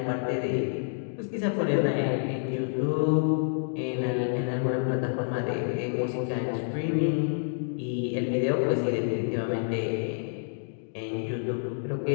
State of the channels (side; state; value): right; silent; digital silence